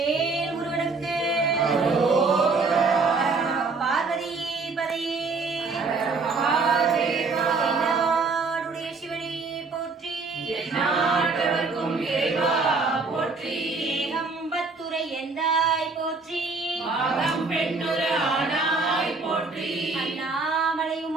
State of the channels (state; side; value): quieter; left; 4.0 dB